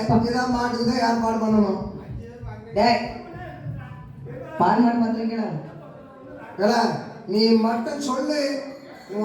மாட்டுக்குதான் யார் பால் பண்ணணும். பால் மாடு பண்றீங்களா? நீ மட்டும் சொல்லு,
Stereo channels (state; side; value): identical; both; correlation 1.00